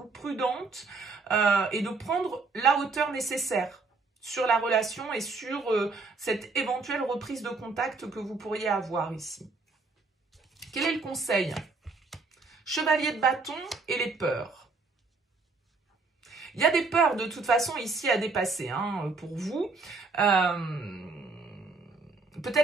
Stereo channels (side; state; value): left; quieter; 4.1 dB